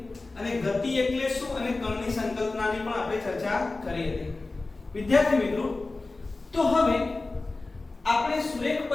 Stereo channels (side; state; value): right; quieter; 3.4 dB